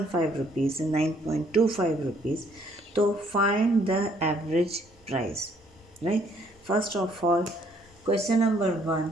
rupees and 9.25 rupees. तो find the average price. Right, first of all question number 1,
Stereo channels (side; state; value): both; normal; correlation 0.65